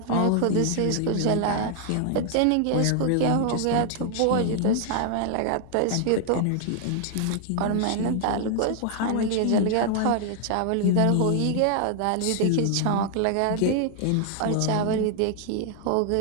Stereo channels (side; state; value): both; different; correlation 0.00